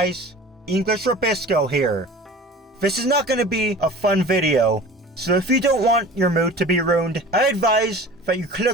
English Rabisco here. This is not going to be a fun video, so if you don't want your mood to be ruined, I advise that you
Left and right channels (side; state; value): both; normal; correlation 0.41